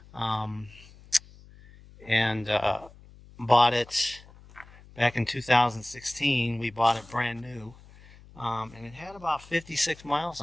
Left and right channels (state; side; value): noise; left; hum, 22 dB below the sound